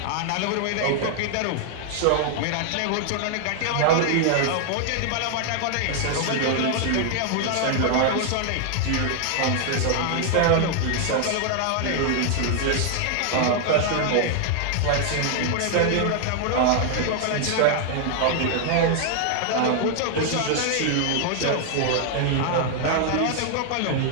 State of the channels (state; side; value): different; both; correlation 0.00